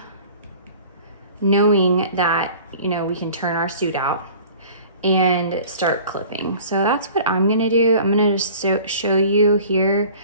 knowing that, you know, we can turn our suit out and start clipping. So that's what I'm gonna do. I'm gonna just show you here.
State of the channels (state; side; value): inverted; both; correlation -0.45